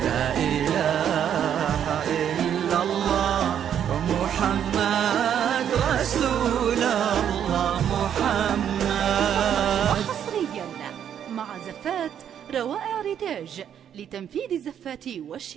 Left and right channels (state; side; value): quieter; left; 9.3 dB